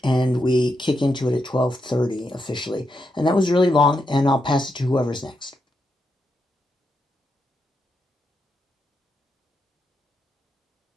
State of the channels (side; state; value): both; normal; correlation 0.83